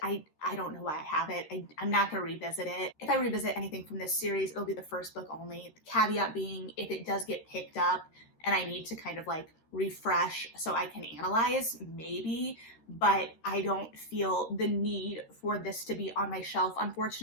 I don't know why I have it. I'm not going to revisit it. If I revisit anything from this series, it'll be the first book only. The caveat being, if it does get picked up and I need to kind of like refresh so I can analyze, maybe, but I don't feel the need for this to be on my shelf,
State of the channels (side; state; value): right; late; 13 ms